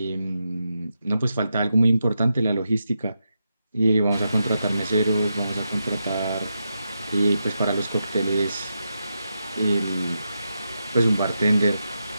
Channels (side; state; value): both; inverted; correlation -0.86